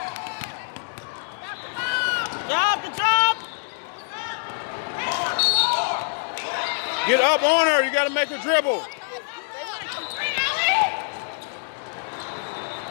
Good job. Get up on her. You got to make her dribble.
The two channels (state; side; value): silent; right; digital silence